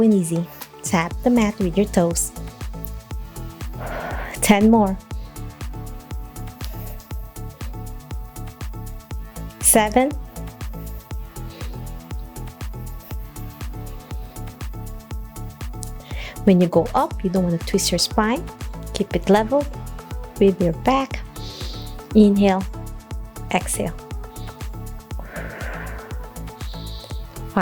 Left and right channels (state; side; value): identical; both; correlation 1.00